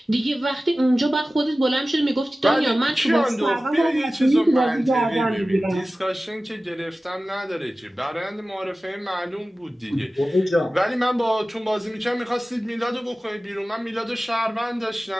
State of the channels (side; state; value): both; normal; correlation 0.96